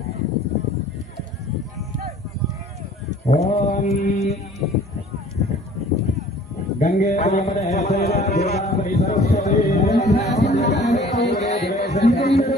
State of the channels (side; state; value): both; normal; correlation 0.50